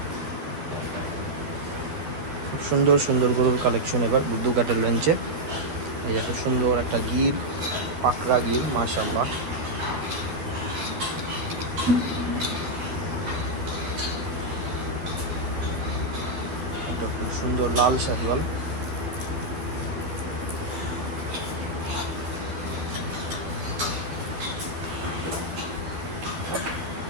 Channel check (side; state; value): left; late; 12 ms